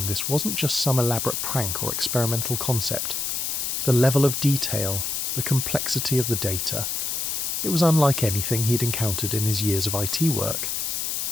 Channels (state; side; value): noise; left; hiss, 1 dB below the sound